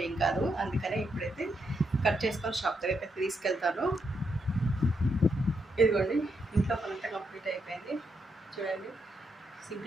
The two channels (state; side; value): normal; both; correlation 0.80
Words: ఏం కాదు. అందుకనే ఇప్పుడైతే కట్ చేసుకొని షాప్ దగ్గరికి అయితే తీసుకెళ్తాను. ఇదిగోండి ఇంట్లో పనంతా కంప్లీట్ అయిపోయింది. చూడండి